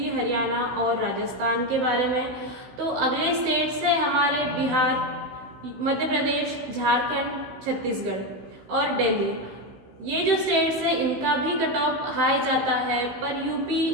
हरियाणा और राजस्थान के बारे में। तो अगले स्टेट्स है हमारे बिहार, मध्य प्रदेश, झारखंड, छत्तीसगढ़ और दिल्ली। ये जो स्टेट्स है इनका भी कट ऑफ हाई जाता है, पर यूपी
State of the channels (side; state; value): left; late; 15 ms